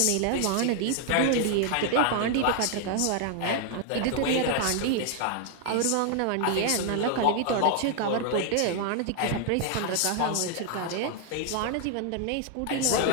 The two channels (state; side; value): different; both; correlation 0.00